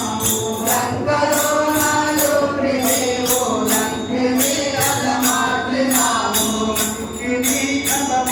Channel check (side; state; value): both; identical; correlation 1.00